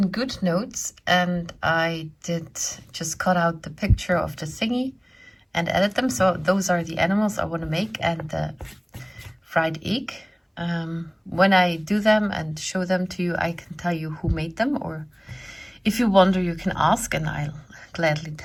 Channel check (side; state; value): both; identical; correlation 1.00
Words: Good Notes, and I did just cut out the picture of the thingy and edit them. So those are the animals I want to make, and the fried egg. When I do them and show them to you, I can tell you who made them, or if you wonder, you can ask and I'll gladly